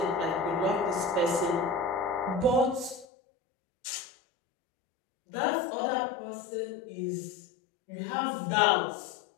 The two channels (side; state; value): right; drops out; at 3.1 s